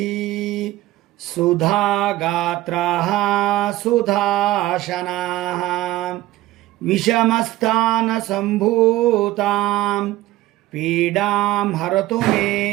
ಸುಧಾಗಾತ್ರಃ ಸುಧಾಶನಾಃ ವಿಷಮಸ್ಥಾನ ಸಂಭೂತಾಂ ಪೀಡಾಂ ಹರತು ಮೇ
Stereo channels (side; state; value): left; quieter; 16.4 dB